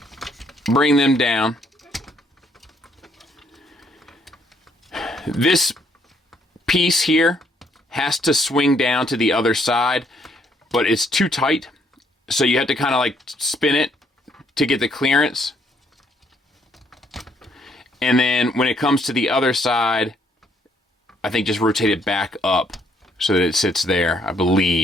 bring them down. This piece here has to swing down to the other side, but it's too tight. So you have to kind of like spin it to get the clearance. And then when it comes to the other side, I think just rotate it back up so that it sits there, I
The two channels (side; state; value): both; normal; correlation 0.69